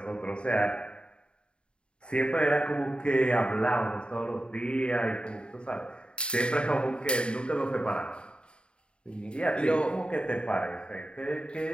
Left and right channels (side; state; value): right; late; 0.053 ms